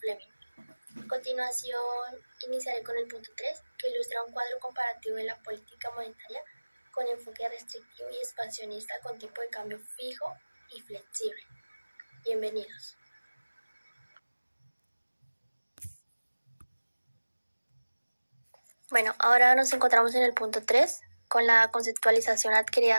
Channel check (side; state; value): both; inverted; correlation -1.00